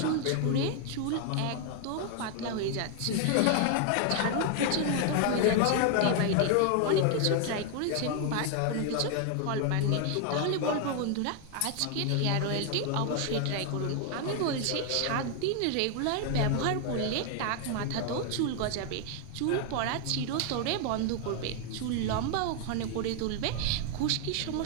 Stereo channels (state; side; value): different; both; correlation 0.00